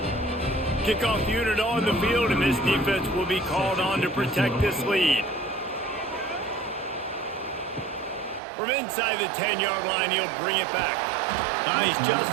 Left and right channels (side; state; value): left; drops out; at 8.4 s